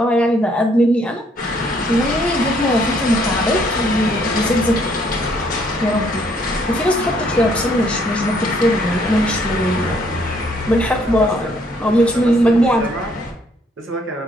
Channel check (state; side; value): normal; both; correlation 0.66